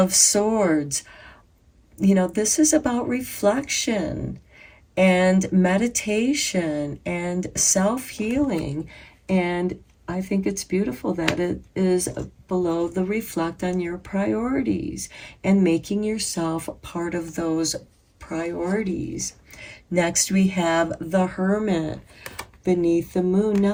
Swords. You know, this is about reflection and meditation and self-healing. And I think it's beautiful that it is below the reflect on your priorities and making yourself part of those priorities. Next, we have the Hermit beneath the moon.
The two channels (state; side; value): identical; both; correlation 1.00